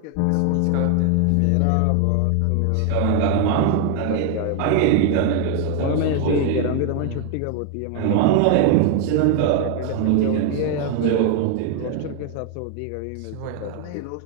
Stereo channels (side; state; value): both; different; correlation 0.01